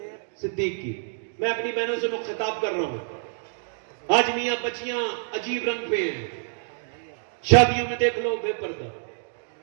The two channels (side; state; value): left; silent; digital silence